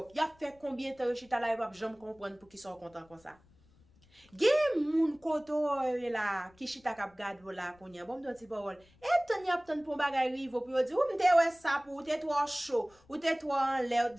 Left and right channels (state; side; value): noise; left; rumble, 30 dB below the sound